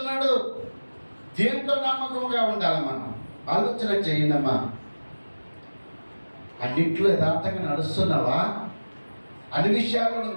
దేంట్లో నమ్మకంగా ఉండాలి? మనం ఆలోచన చేయండమ్మా. అన్నింటిలో యథార్థంగా నడుస్తున్నావా? అన్ని విషయాల్లో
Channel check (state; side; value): inverted; both; correlation -1.00